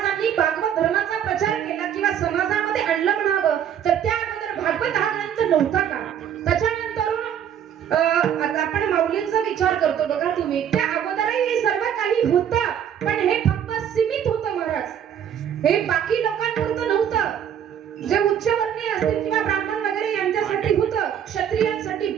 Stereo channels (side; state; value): left; quieter; 9.2 dB